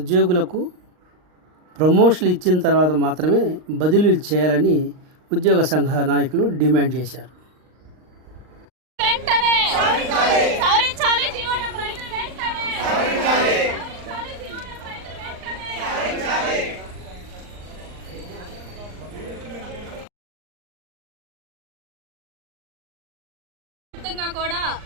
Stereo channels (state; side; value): late; left; 39 ms